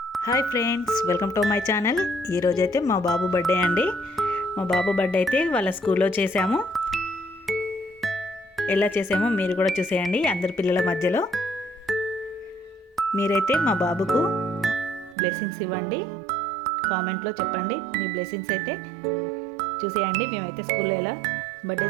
Hi friends, welcome to my channel. ఈరోజైతే మా బాబు బర్త్డే అండి. మా బాబు బర్త్డే అయితే వాళ్ళ స్కూల్లో చేసాము. ఎలా చేసామో మీరు కూడా చూసేయండి. అందరి పిల్లల మధ్యలో మీరైతే మా బాబుకు బ్లెస్సింగ్స్ ఇవ్వండి. కామెంట్లో చెప్పండి మీ బ్లెస్సింగ్స్ అయితే చూసేయండి. మేమైతే స్కూల్లో ఎలా బర్త్డే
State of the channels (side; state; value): left; drops out; at 15.2 s